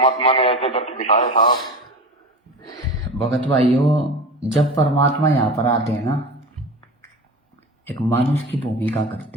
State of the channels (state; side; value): normal; both; correlation 0.30